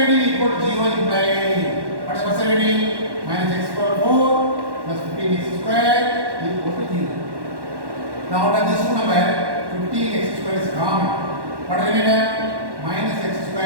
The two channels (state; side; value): late; left; 1.1 ms